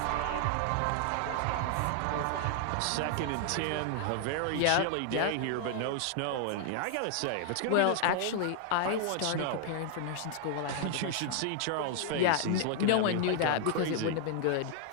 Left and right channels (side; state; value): both; different; correlation 0.00